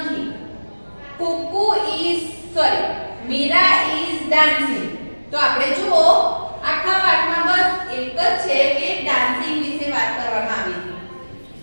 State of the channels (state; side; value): inverted; both; correlation -1.00